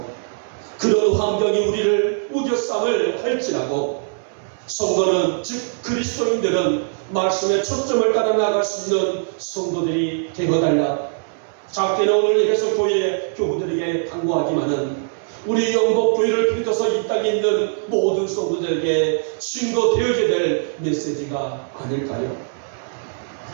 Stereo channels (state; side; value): silent; left; 65 dB below the other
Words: 그런 환경이 우리를 우겨쌈을 할지라도 성도는 즉 그리스도인들은 말씀의 초점을 따라 나갈 수 있는 성도들이 되어달라. 작게는 오늘 예배소 교회 교우들에게 당부하지만은 우리 영복교회를 비롯해서 이 땅에 있는 모든 성도들에게 증거되어야 될 메시지가 아닐까요?